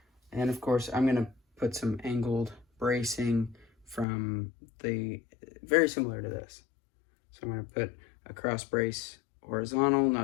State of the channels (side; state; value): right; drops out; at 4.0 s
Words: And of course, I'm going to put some angled bracing from the, very similar to this. So I'm going to put a cross brace horizontal,